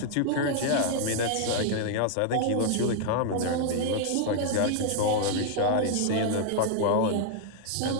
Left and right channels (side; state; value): both; different; correlation 0.00